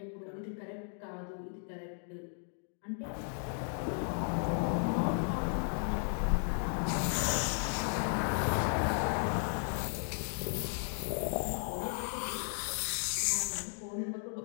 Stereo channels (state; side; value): silent; right; 54 dB below the other